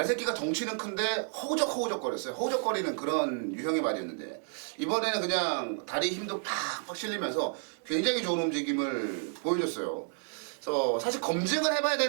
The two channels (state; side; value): silent; left; 57 dB below the other